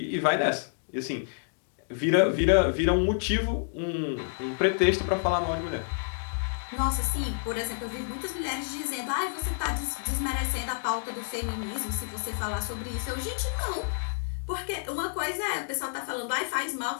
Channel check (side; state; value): right; silent; digital silence